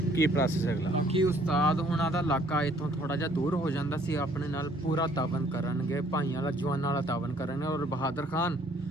ਕੀ ਪ੍ਰੋਸੈਸ ਹੈ ਅਗਲਾ। ਬਾਕੀ ਉਸਤਾਦ ਹੁਣਾਂ ਦਾ ਇਲਾਕਾ ਇੱਥੋਂ ਥੋੜਾ ਜਿਹਾ ਦੂਰ ਹੋ ਜਾਂਦਾ ਸੀ। ਆਪਣੇ ਨਾਲ ਪੂਰਾ ਤਾਵਨ ਕਰਨਗੇ, ਭਾਈਆਂ ਵਾਲਾ ਜਵਾਨਾਂ ਵਾਲਾ ਤਾਵਨ ਕਰਨਗੇ। ਔਰ ਬਹਾਦਰ ਖਾਨ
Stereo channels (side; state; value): both; normal; correlation 0.61